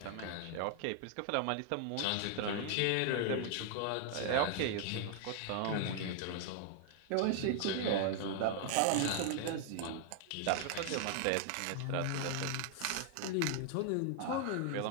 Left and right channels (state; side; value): different; both; correlation 0.00